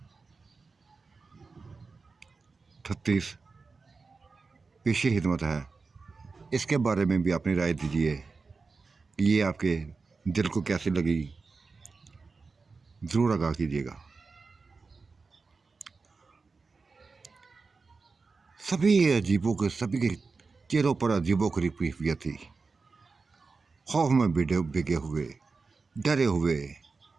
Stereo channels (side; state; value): left; quieter; 4.3 dB